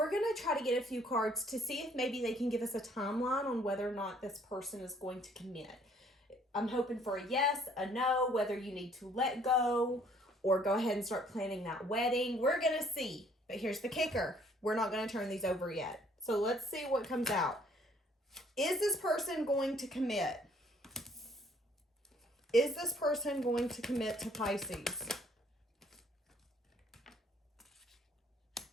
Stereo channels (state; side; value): normal; both; correlation 0.61